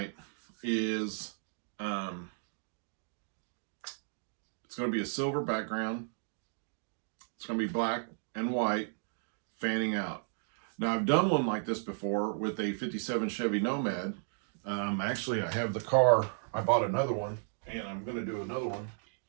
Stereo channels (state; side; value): silent; left; digital silence